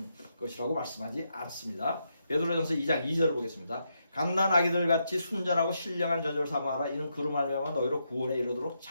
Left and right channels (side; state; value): both; inverted; correlation -0.81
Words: 것이라고 말씀하지 않습니다. 베드로전서 2장 2절을 보겠습니다. 갓난 아기들 같이 순전하고 신령한 젖을 삼아라. 이는 그로 말미암아 너희로 구원에 이르도록